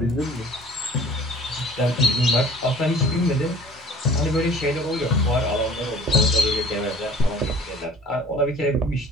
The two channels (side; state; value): both; normal; correlation 0.49